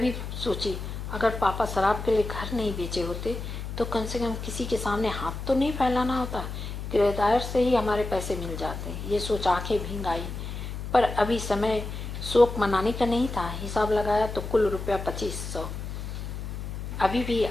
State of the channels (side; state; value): left; noise; hum, 7 dB below the sound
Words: सोची, अगर पापा शराब के लिए घर नहीं बेचे होते तो कम से कम किसी के सामने हाथ तो नहीं फैलाना होता, किराएदार से ही हमारे पैसे मिल जाते। ये सोच आंखें भींग आई, पर अभी समय शोक मनाने का नहीं था। हिसाब लगाया तो कुल रुपया 2500, अभी भी